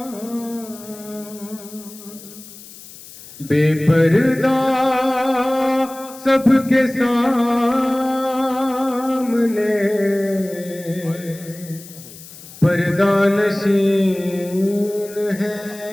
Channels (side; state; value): left; noise; hiss, 18 dB below the sound